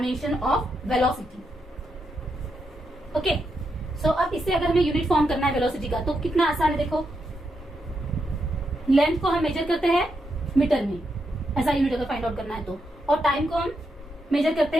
of velocity. Okay. So अब इससे अगर हमें यूनिट फॉर्म करना है वेलोसिटी का तो कितना आसान है। देखो, लेंथ को हम मेजर करते हैं मीटर में ऐसा यूनिट अगर फाइंड आउट करना है तो। और टाइम को हम मेजर करते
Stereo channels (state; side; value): normal; both; correlation 0.82